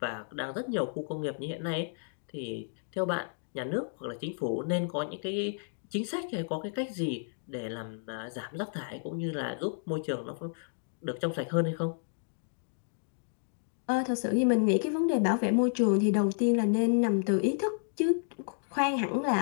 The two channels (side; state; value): right; silent; digital silence